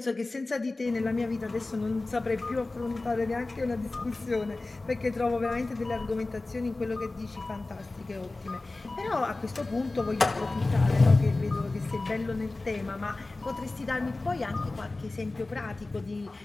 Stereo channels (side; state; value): right; quieter; 3.2 dB